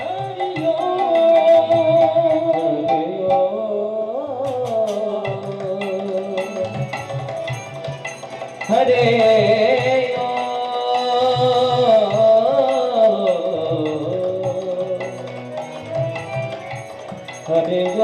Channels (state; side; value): identical; both; correlation 1.00